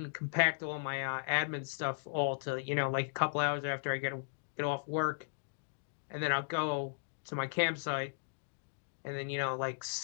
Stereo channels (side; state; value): right; silent; digital silence